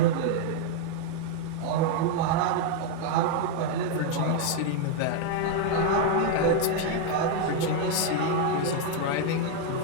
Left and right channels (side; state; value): both; different; correlation 0.01